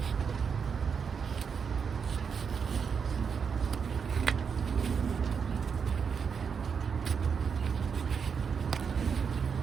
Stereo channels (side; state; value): left; quieter; 6.3 dB